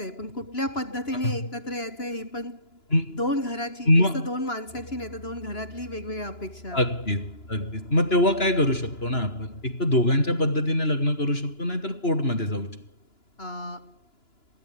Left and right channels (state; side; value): late; right; 2.9 ms